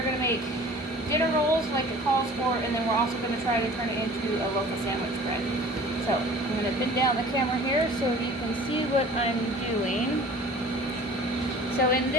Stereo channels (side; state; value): both; normal; correlation 0.46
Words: going to make dinner rolls like it calls for, and then we're also going to try to turn it into a local sandwich bread. So I'm going to bend down the camera here so you can see what I'm doing. So in